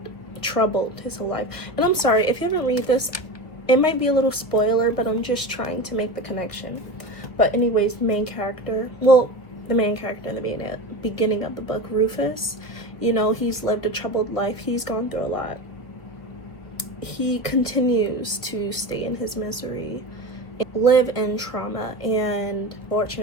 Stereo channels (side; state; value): right; late; 1.8 ms